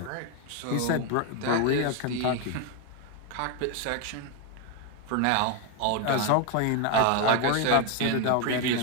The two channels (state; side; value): different; both; correlation 0.02